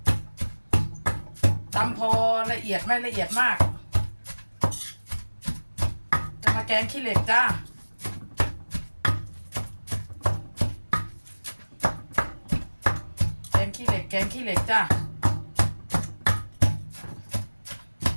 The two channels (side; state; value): both; inverted; correlation -1.00